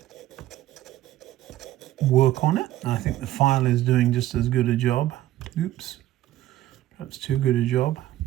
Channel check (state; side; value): quieter; left; 14.2 dB